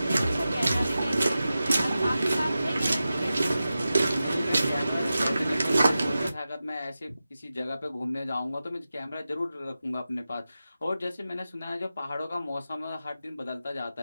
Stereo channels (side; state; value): both; inverted; correlation -0.93